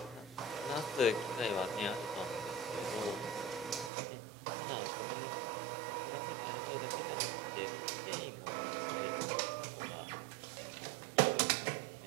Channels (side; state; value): left; drops out; at 3.9 s